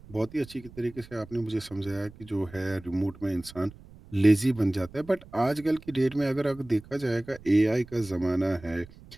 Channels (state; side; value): noise; right; rumble, 20 dB below the sound